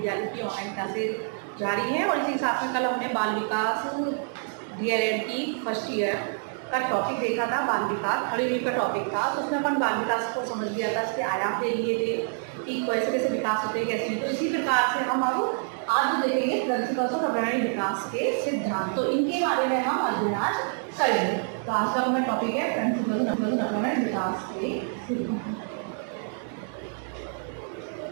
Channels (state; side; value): silent; left; 60 dB below the other